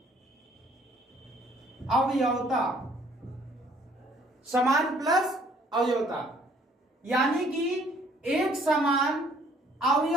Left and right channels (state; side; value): normal; both; correlation 0.60